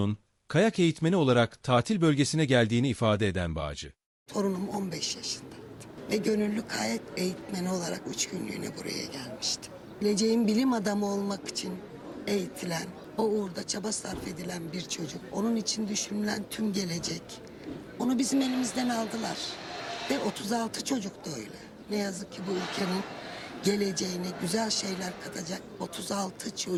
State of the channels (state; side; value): identical; both; correlation 1.00